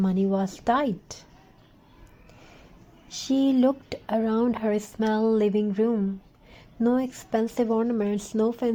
was tight. She looked around her small living room. No expensive ornaments, no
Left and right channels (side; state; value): both; identical; correlation 1.00